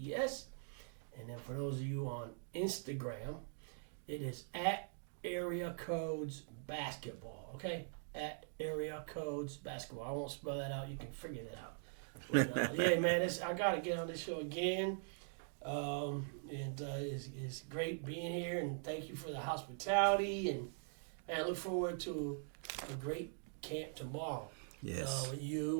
And then for those of you on Instagram, it is at AreaCodes Basketball. Okay, at AreaCodes Basketball. I won't spell that out. You can figure that out. But yeah, man, I got to get on this show again. It's great being here, and thank you for the hospitality. And man, I look forward to a great camp tomorrow. Yes. With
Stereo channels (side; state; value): left; silent; digital silence